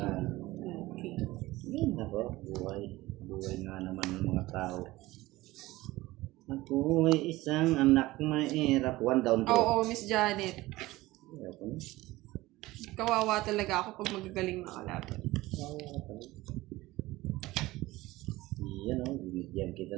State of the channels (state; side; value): quieter; left; 18.6 dB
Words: Yan ako, buhay. Buhay nga naman ng mga tao. Ako ay isang anak mahirap. One down to. Oo, Miss Janet. Ayaw ko na. Kawawa talaga ako pag magagaling na kalaban. Yan o, binigyan kita